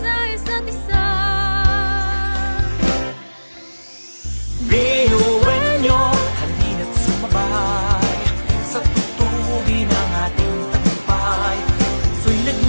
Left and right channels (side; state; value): both; inverted; correlation -1.00